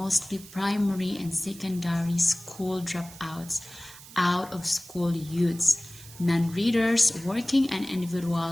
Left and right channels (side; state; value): right; noise; hiss, 18 dB below the sound